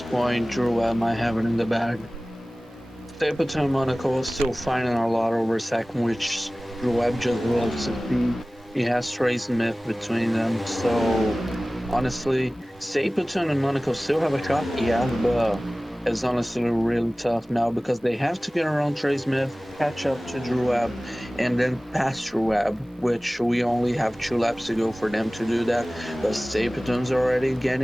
point, Drew Webb might have it in the bag. Stapleton and Monaco is still finding a lot over second, which Drew Webb just loves to see. He has Trey Smith between them, so honestly, Stapleton and Monaco still have a shot, yeah, but it's honestly really tough now because they have to get around Trey Smith, catch up to Drew Webb, and then pass Drew Webb, which we only have 2 laps to go for them to do that. But Stapleton's already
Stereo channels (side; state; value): both; normal; correlation 0.98